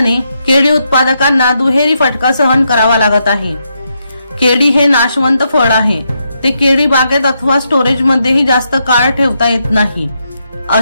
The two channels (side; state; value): both; inverted; correlation -0.81